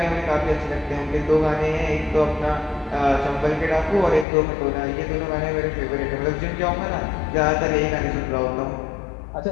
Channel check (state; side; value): drops out; right; at 4.2 s